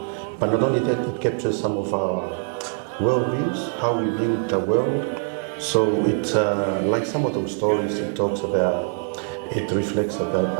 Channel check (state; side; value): silent; left; 57 dB below the other